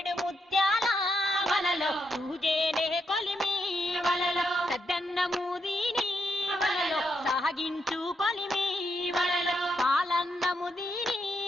ముత్యాల వలలో తూజేనే కొలిమి వలలో సద్దన్న మూదిని వలలో సాగించు కొలిమి వలలో పాలన్న ముదిని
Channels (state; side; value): normal; both; correlation 0.81